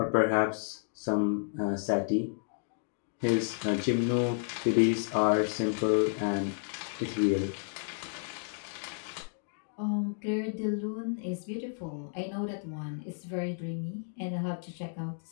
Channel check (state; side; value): silent; right; digital silence